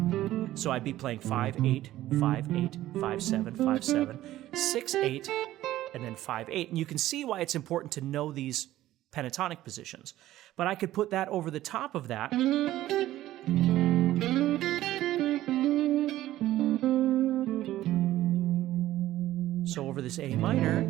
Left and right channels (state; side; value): quieter; left; 14.6 dB